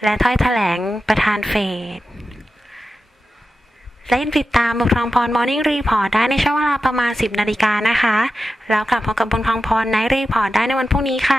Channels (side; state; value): both; normal; correlation 0.92